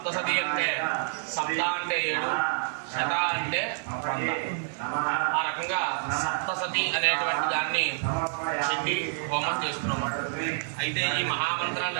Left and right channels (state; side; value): silent; left; 59 dB below the other